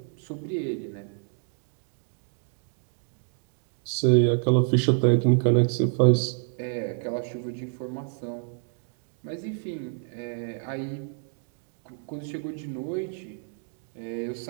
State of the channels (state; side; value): silent; left; digital silence